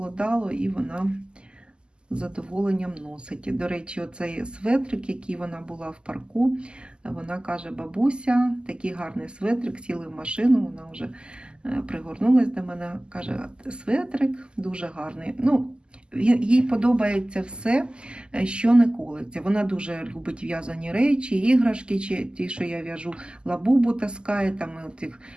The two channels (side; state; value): left; late; 0.049 ms